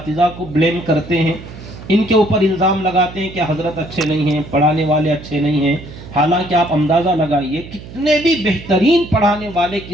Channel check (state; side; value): noise; right; hum, 15 dB below the sound